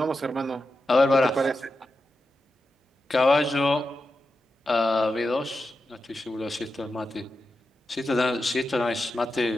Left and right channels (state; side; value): normal; both; correlation 0.89